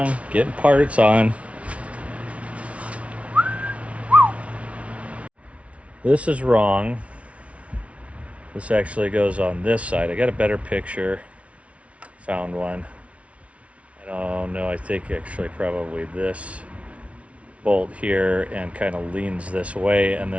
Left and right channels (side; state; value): left; late; 0.063 ms